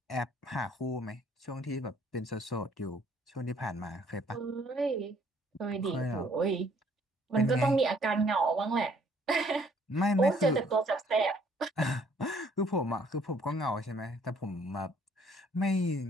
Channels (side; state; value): both; normal; correlation 0.62